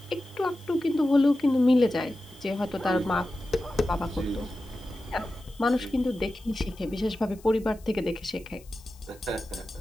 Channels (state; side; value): noise; left; hiss, 25 dB below the sound